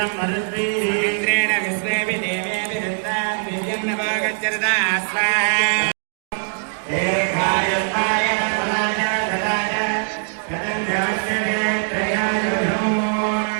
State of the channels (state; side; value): silent; left; 65 dB below the other